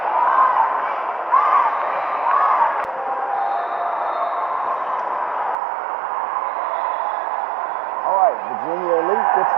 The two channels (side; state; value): left; drops out; at 5.6 s